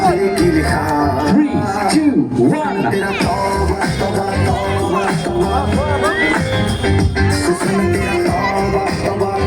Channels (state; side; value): identical; both; correlation 1.00